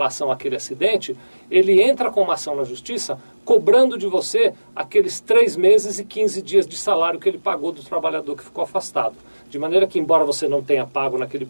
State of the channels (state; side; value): inverted; both; correlation -1.00